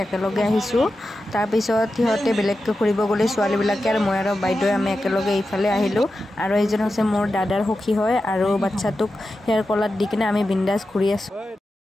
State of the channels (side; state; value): both; normal; correlation 0.91